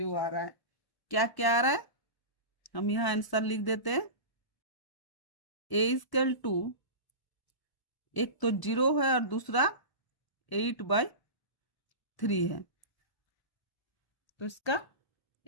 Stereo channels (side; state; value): right; late; 1.0 ms